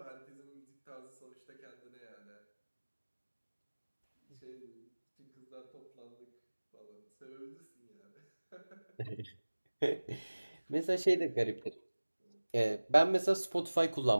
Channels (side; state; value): both; inverted; correlation -1.00